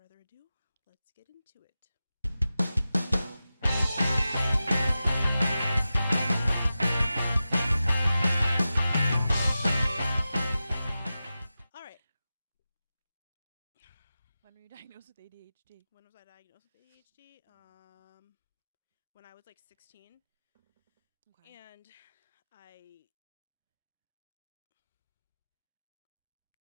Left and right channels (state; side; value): inverted; both; correlation -0.94